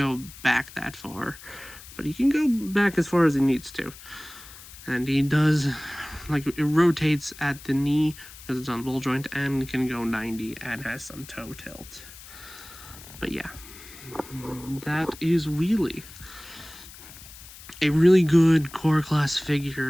back that far, but he can go back as far as he needs to. And he does, like, it rotates at the knee because it's on ball joint, and can go 90 and has some toe tilt. But yeah, that is Wheelie. A really good core class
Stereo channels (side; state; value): left; noise; hiss, 17 dB below the sound